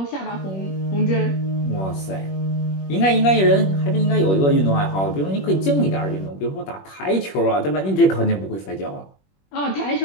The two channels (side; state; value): right; late; 21 ms